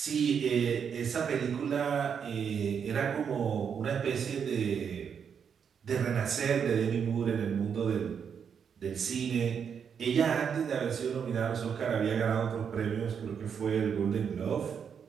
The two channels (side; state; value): left; quieter; 7.2 dB